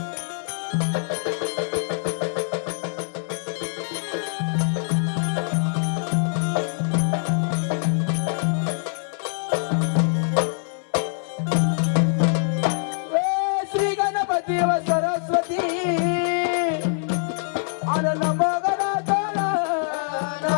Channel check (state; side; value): silent; right; 63 dB below the other